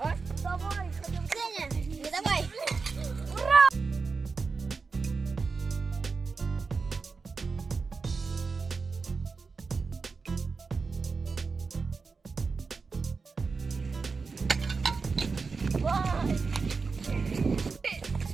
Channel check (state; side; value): quieter; left; 4.6 dB